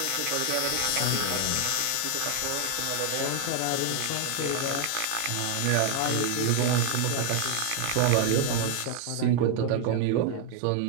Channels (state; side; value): different; both; correlation 0.00